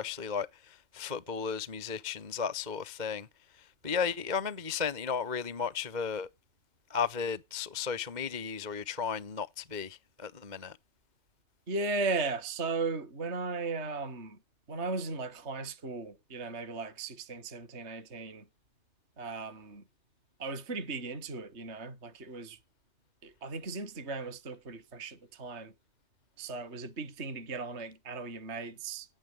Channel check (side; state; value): left; late; 2.1 ms